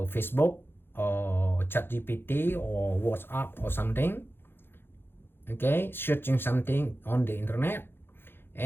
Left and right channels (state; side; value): late; right; 0.10 ms